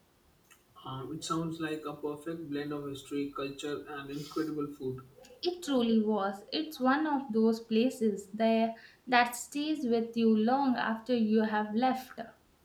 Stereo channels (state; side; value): identical; both; correlation 1.00